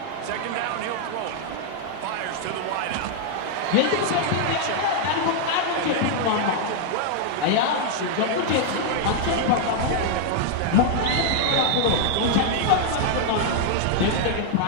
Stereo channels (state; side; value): different; both; correlation -0.01